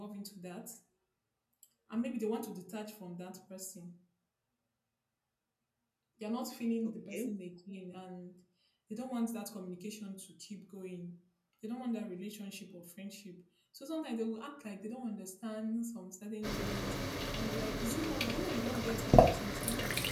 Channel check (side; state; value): both; identical; correlation 1.00